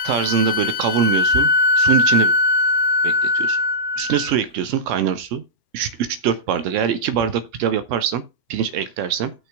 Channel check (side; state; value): left; late; 2.9 ms